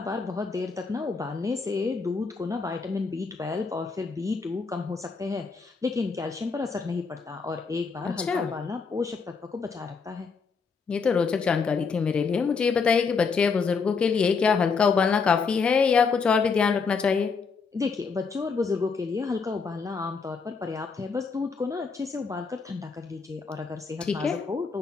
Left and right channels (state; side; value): quieter; right; 5.1 dB